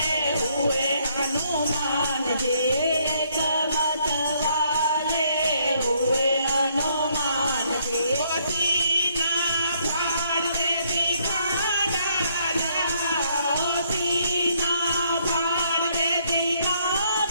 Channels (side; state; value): both; inverted; correlation -0.69